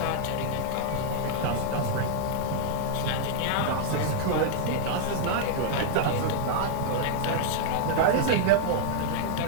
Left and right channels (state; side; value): different; both; correlation -0.01